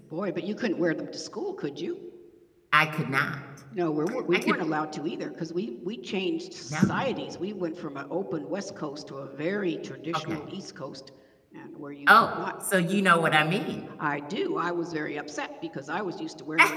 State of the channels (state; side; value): identical; both; correlation 1.00